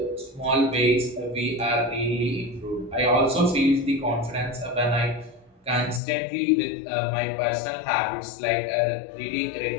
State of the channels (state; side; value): drops out; right; at 6.0 s